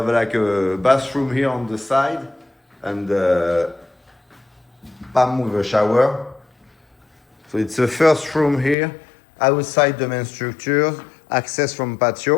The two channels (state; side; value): drops out; right; at 8.8 s